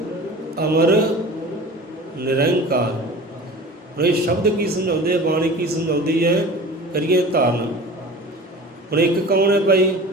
ਅਮਰ ਨਿਰੰਕਾਰ। ਹੁਣ ਇਹ ਸ਼ਬਦ ਕੀ ਸਮਝਾਉਂਦੇ ਆ, ਬਾਣੀ ਕੀ ਸਮਝਾਉਂਦੀ ਹੈ, ਕਰੀਏ ਧਾਰਨ। ਹੁਣ ਇੱਕ ਕੌਣ ਹੈ ਭਾਈ?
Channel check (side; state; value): both; normal; correlation 0.39